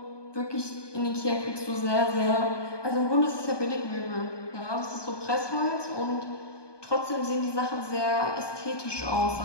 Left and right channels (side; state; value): right; late; 1.2 ms